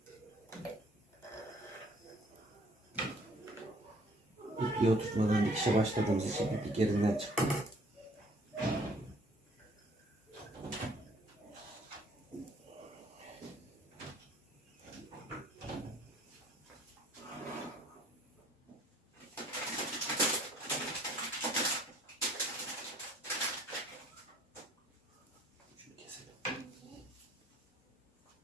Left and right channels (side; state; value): both; normal; correlation 0.58